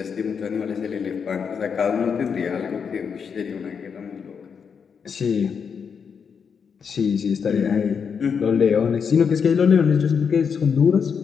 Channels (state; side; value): quieter; right; 6.5 dB